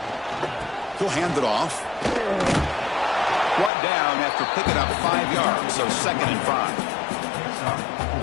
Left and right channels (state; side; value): drops out; right; at 3.7 s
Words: He'll hand it off. Brought down after picking up 5 yards, so 2nd and 5.